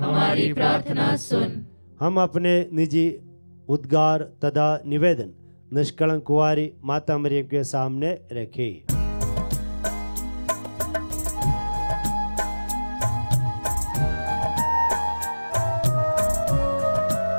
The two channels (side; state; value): both; inverted; correlation -1.00